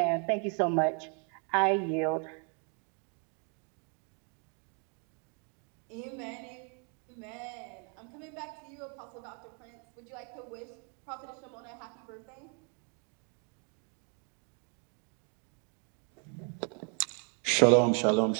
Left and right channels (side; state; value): left; quieter; 38.5 dB